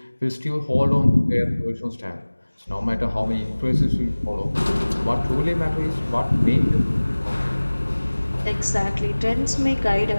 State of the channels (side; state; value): both; inverted; correlation -1.00